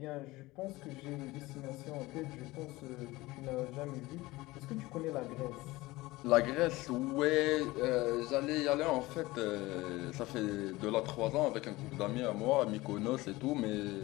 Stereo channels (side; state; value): right; quieter; 19.9 dB